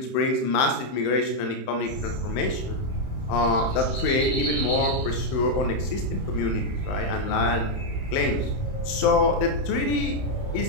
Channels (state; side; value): late; right; 31 ms